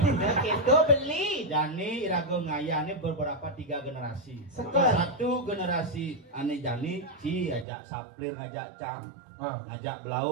Kita beli. Jani irago ngayane beberapa 3 generasi. Sekel. Satu generasi ane Jani Ci ajak Saplir ngajak Cam. Ngajak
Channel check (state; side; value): drops out; left; at 7.7 s